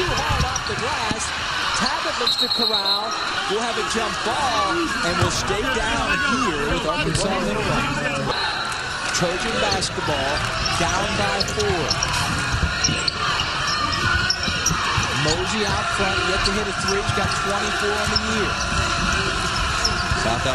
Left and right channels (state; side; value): identical; both; correlation 1.00